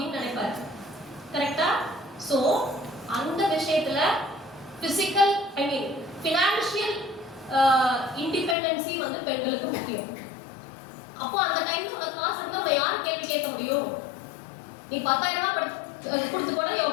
நினைப்பாரு. கரெக்டா? ஸோ அந்த விஷயத்துல பிசிக்கல், ஐ மீன் ஃபினான்ஷியல் இண்டிபெண்டன்சி வந்து பெண்களுக்கு முக்கியம். அப்போ அந்த டைம்ல உனக்கு காசு இருந்தா நம்ம யார் கேள்வி கேட்க முடியும்? நீ 10,000 ரூபாய் கொடுத்து கூட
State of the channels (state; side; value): drops out; right; at 8.6 s